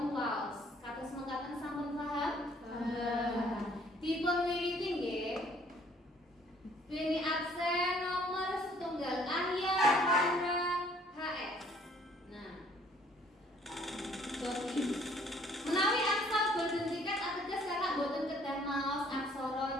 waos. Kados mekaten sampun paham? Dipun wiwiti nggih. Beni aksen nomor setunggal ahya haura HS. Nah. Jadi menawi angsal boten tiket ateges kakak boten kedah maos aksara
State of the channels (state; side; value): normal; both; correlation 0.60